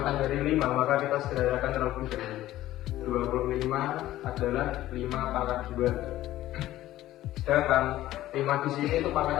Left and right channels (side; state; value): right; quieter; 14.7 dB